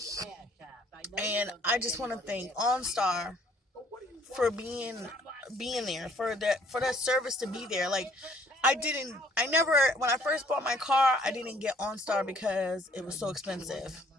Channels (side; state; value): both; normal; correlation 0.60